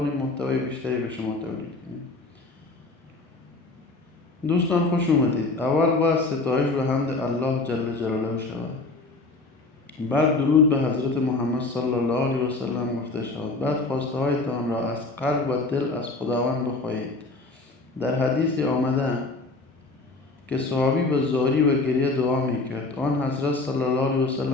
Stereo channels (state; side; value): quieter; right; 3.4 dB